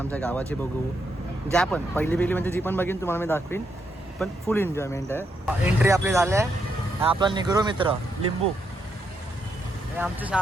गावाची बघू. ज्या पण पहिली म्हणजे जी पण बघीन तुम्हाला मी दाखवीन. पण फुल एन्जॉयमेंट आहे. एंट्री आपली झाली आहे. आपला निग्रो मित्र लिंबू. हे आमची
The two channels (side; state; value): both; normal; correlation 0.79